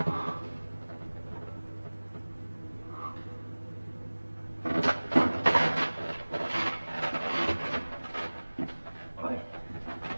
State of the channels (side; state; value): both; inverted; correlation -1.00